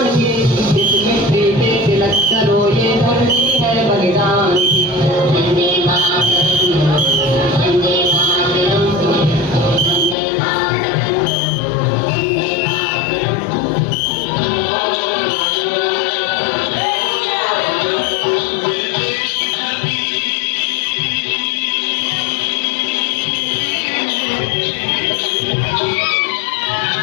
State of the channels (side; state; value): right; drops out; at 10.2 s